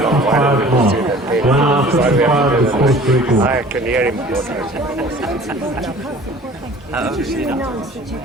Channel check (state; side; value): normal; both; correlation 0.47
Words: mark. 1 hour 55 is the course record. I can hear him. How old is he now?